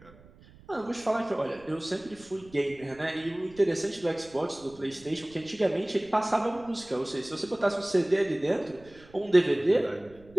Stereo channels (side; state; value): right; noise; rumble, 24 dB below the sound